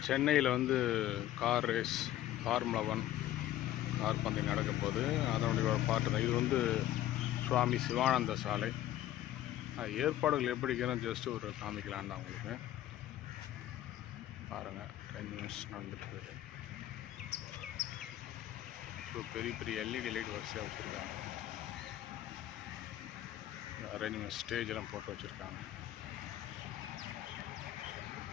சென்னையில் வந்து கார் ரேஸ் ஃபார்முலா 1 கார் பந்தயம் நடக்க போகுது. அதனுடைய ஒரு பாட்டு தான் இது. வந்து சுவாமி சிவானந்த சாலை. ஏற்பாடுகள் எப்படி இருக்கிறோம் ஜஸ்ட் ஒரு காமிக்கலான்னு தான் உங்களுக்கு. பாருங்கள், 10 நிமிஷம் நடந்துட்டுருக்கு. ஸோ பெரிய பெரிய எல்இடி லைட் வரிசையாக வச்சுருக்காங்க. அரேஞ்ச்மெண்ட் ஸ்டேஜ் எல்லாம் போட்டு வச்சுருக்காங்க.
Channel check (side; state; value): right; quieter; 13.4 dB